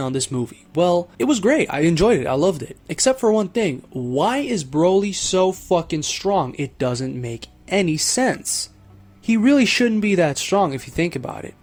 this movie? Well, it was great. I enjoyed it. I loved it. Except for one thing. Why is Broly so fucking strong? It doesn't make any sense. He really shouldn't be that strong if you think about it.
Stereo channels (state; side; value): identical; both; correlation 1.00